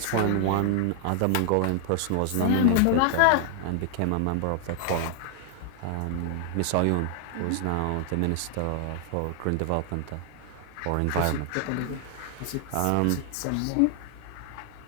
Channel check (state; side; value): different; both; correlation 0.00